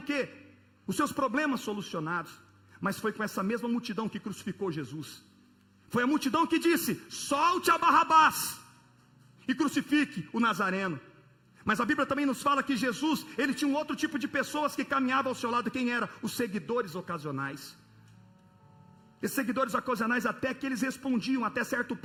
quê? Os seus problemas solucionados. Mas foi com essa mesma multidão que crucificou Jesus. Foi a multidão que disse: solte a Barrabás e crucifique o Nazareno. Mas a Bíblia também nos fala que Jesus, Ele tinha um outro tipo de pessoas que caminhavam ao seu lado. Quem era? Os seguidores ocasionais. Esses seguidores ocasionais, até que eles respondiam até certo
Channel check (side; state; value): both; identical; correlation 1.00